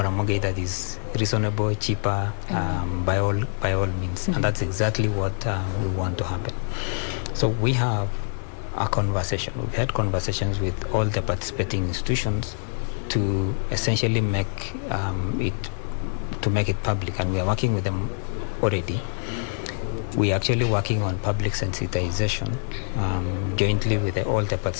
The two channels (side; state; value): right; silent; digital silence